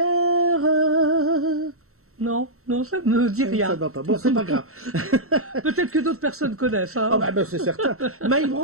Non, ça me dit rien. Ça va pas. Bon, c'est pas grave. Peut-être que d'autres personnes connaissent. Hein. Oh bah, c'est certain. Mike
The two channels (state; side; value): late; left; 0.63 ms